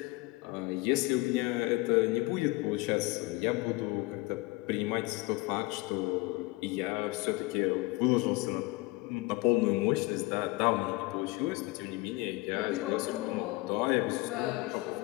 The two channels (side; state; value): right; quieter; 22.8 dB